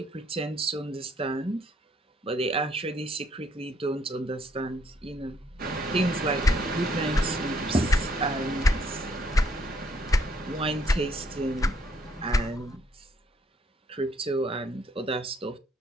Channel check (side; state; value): both; normal; correlation 0.68